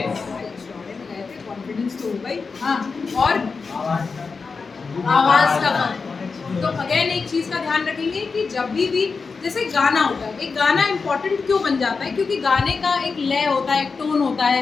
कॉन्फिडेंस तो होगा ही। हाँ, और आवाज का फर्क। तो अगेन एक चीज का ध्यान रखेंगे कि जब भी जैसे गाना होता है, एक गाना इंपॉर्टेंट क्यों बन जाता है? क्योंकि गाने का एक लय होता है, एक टोन होता है,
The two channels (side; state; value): right; quieter; 4.8 dB